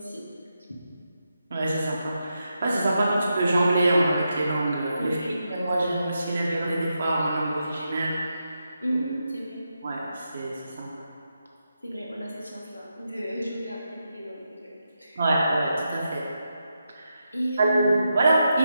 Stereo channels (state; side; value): inverted; both; correlation -0.86